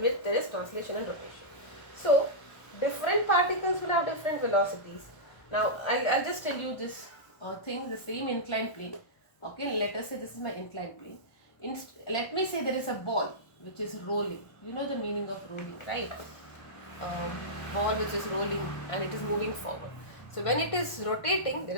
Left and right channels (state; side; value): late; right; 1.1 ms